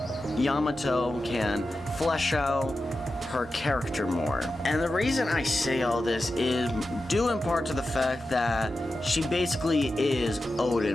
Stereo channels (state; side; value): normal; both; correlation 0.92